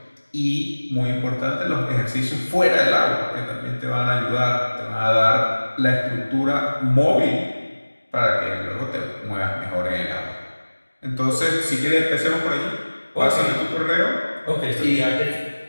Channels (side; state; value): both; inverted; correlation -1.00